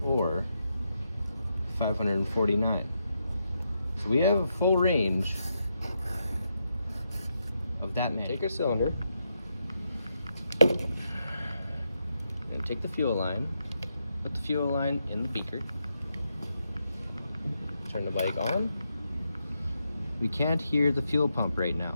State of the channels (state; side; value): inverted; both; correlation -0.83